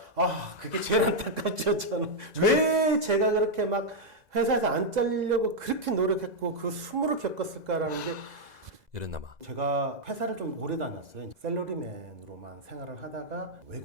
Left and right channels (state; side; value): late; left; 2.0 ms